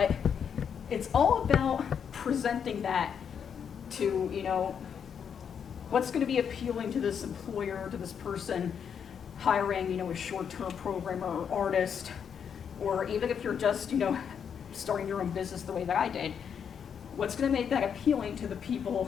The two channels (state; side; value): quieter; right; 7.5 dB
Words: it's all about presenting that to, what's going to be appealing to this employer, to this person hiring, a short-term programmer or artist, or even if you're just, starting your own business the way that I did, what's going to make that appealing to the